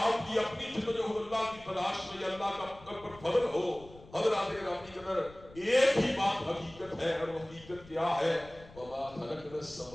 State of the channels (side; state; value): left; noise; rumble, 21 dB below the sound